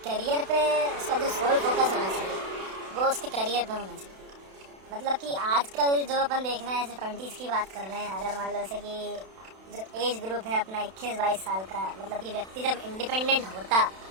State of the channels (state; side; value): late; left; 32 ms